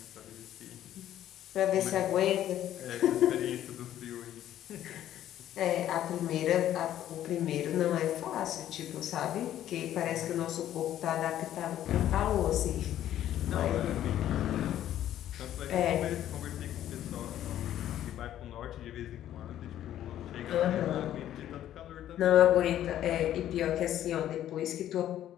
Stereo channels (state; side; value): quieter; right; 11.9 dB